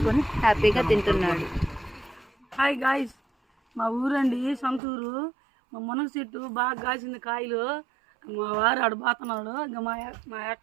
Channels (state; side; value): drops out; left; at 4.8 s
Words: హ్యాపీగా తింటున్నాడు. హాయ్ గాయ్స్, మా ఊరండి సొంతూరు. మా మునగ చెట్టు బాగా కాసింది కాయలు. మా వారు ఆడు పోతున్నాడు. ఇంకా మా